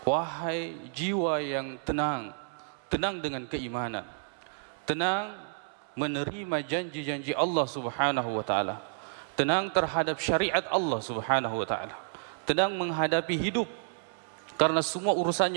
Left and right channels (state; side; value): silent; left; digital silence